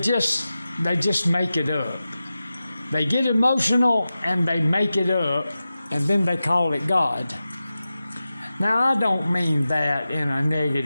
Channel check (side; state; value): both; inverted; correlation -0.94